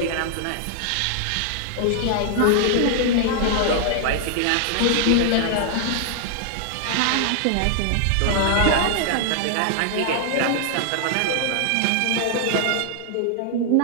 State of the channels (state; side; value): different; both; correlation 0.00